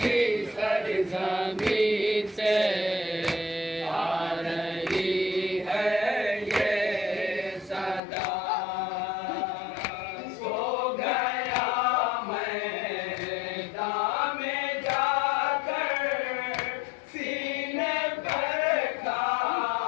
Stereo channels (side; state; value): right; drops out; at 8.0 s